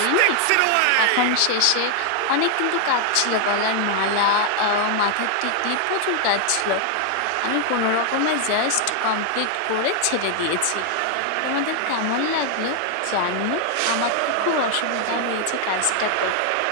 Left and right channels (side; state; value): both; different; correlation 0.00